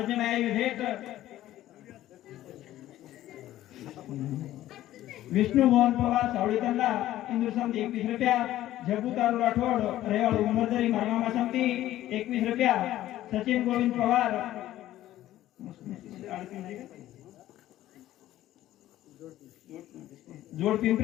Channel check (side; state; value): right; quieter; 14.0 dB